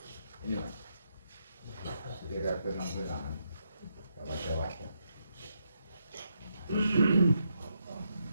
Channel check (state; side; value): inverted; both; correlation -0.80